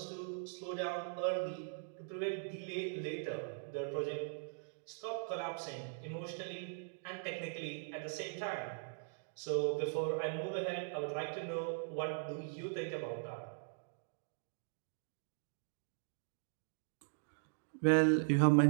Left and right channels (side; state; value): left; silent; digital silence